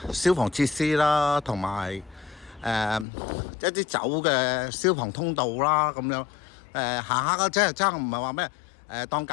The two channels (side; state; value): right; drops out; at 3.1 s